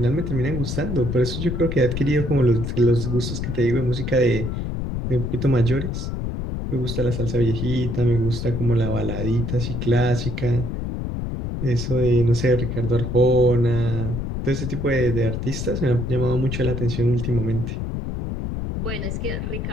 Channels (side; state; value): left; noise; rumble, 4 dB below the sound